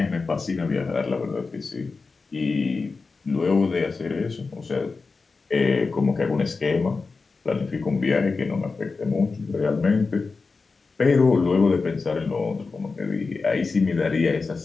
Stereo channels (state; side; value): quieter; right; 4.3 dB